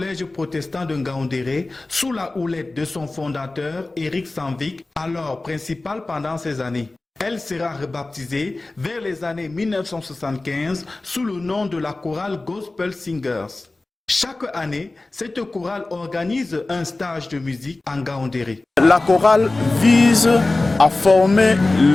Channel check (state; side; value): quieter; right; 3.1 dB